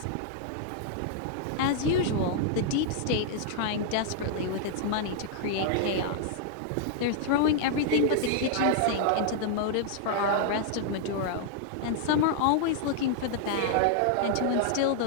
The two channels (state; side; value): different; both; correlation -0.01